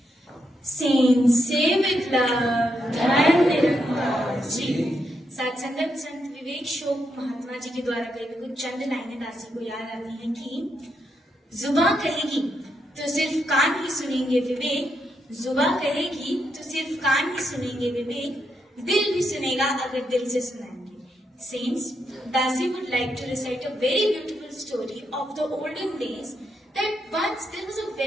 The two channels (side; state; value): both; normal; correlation 0.81